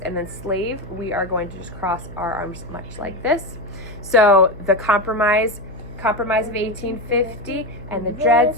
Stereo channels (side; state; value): left; noise; hum, 19 dB below the sound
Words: And then slave, we are going to just cross our arms much like this. So the compromise of 1850 and the Dred